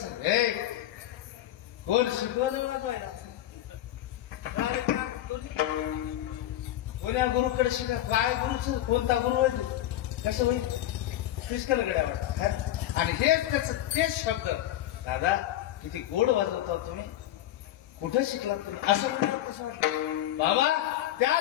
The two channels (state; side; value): quieter; right; 13.4 dB